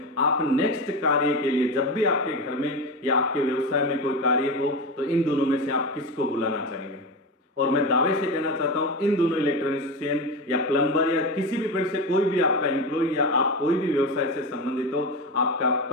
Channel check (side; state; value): both; normal; correlation 0.20